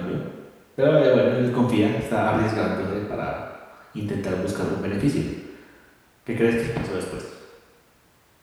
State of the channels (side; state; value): both; identical; correlation 1.00